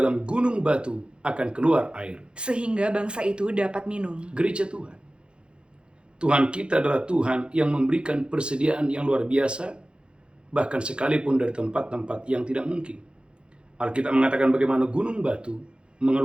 gunung batu akan keluar air, sehingga bangsa itu dapat minum. Gereja Tuhan, Tuhan kita adalah Tuhan yang memberikan persediaan yang luar biasa, bahkan sekalipun dari tempat-tempat yang tidak mungkin. Alkitab mengatakan bagaimana gunung batu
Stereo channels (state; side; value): late; left; 0.054 ms